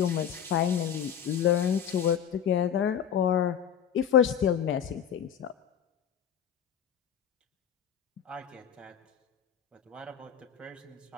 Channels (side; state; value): right; quieter; 8.9 dB